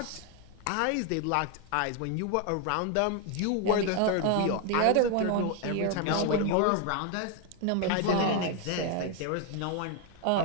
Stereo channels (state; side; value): different; both; correlation 0.01